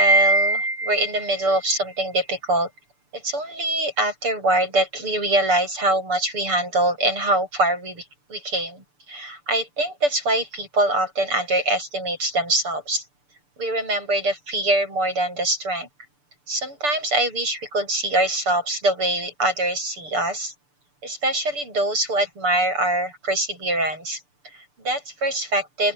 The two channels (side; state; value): left; late; 6.8 ms